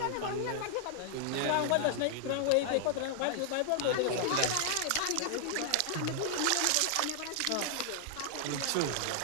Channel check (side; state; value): both; different; correlation 0.00